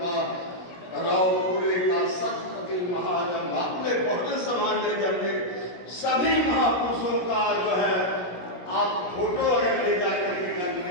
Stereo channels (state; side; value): late; right; 16 ms